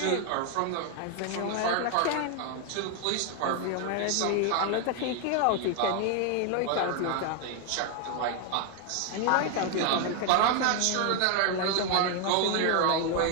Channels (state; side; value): different; both; correlation 0.00